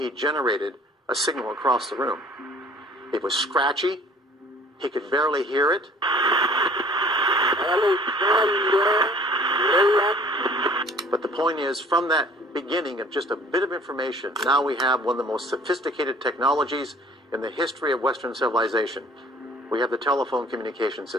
generated a signal across the room. It was scratchy. He could barely hear it. But the point is, from that beginning of just a bit of information, now we have one of the most sophisticated technologies in the history of Western civilization. We have the telephone communication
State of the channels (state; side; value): normal; both; correlation 0.52